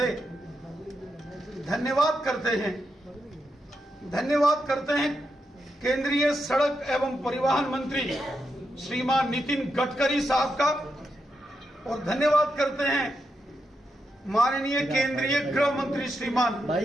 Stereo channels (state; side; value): normal; both; correlation 0.85